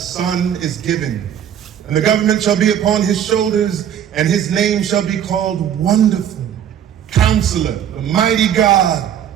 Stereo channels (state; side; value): quieter; left; 9.6 dB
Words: is given, and the government shall be upon his shoulders, and his name shall be called Wonderful, Counselor, the Mighty God,